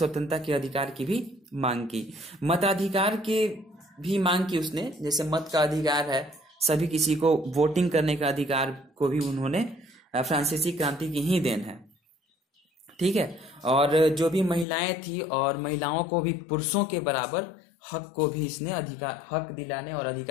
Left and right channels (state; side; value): drops out; right; at 14.7 s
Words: के अधिकार की भी मांग की। मताधिकार के भी मांग की उसने, जैसे मत का अधिकार है, सभी किसी को वोटिंग करने का अधिकार को भी उन्होंने फ्रांसीसी क्रांति की ही देन है। ठीक है। और जो भी महिलाएं थी और महिलाओं को भी पुरुषों के बराबर हक को भी इसने हक दिलाने और